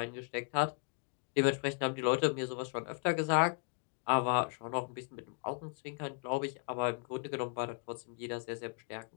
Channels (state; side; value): quieter; right; 37.6 dB